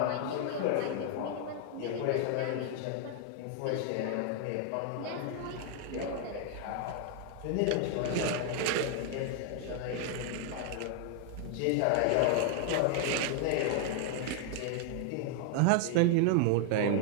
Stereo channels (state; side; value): different; both; correlation 0.00